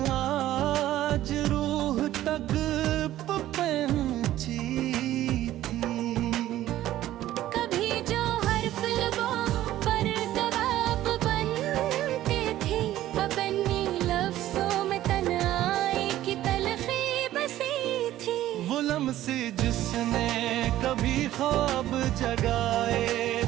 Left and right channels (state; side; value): quieter; left; 13.9 dB